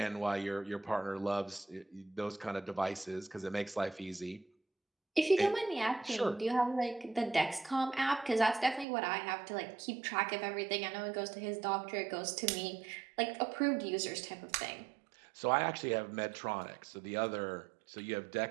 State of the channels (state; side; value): drops out; left; at 8.8 s